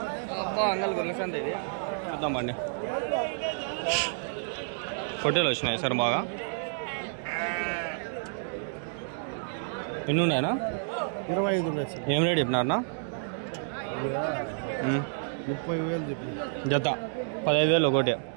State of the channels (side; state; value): left; silent; digital silence